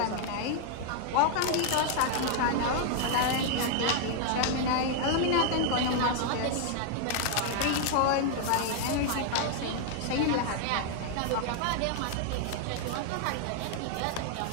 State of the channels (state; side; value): different; both; correlation 0.00